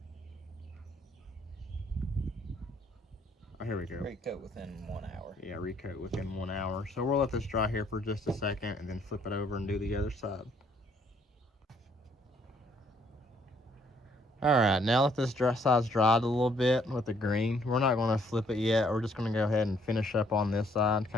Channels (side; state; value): both; normal; correlation 0.66